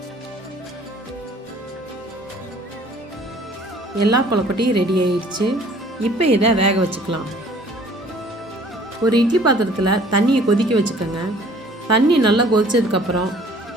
எல்லா கொழுக்கட்டையும் ரெடி ஆயிடுச்சு. இப்போ இதை வேக வச்சுக்கலாம். ஒரு இட்லி பாத்திரத்தில் தண்ணியை கொதிக்க வச்சுக்கோங்க. தண்ணி நல்லா கொதிச்சதுக்கப்புறம்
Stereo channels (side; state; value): both; normal; correlation 0.54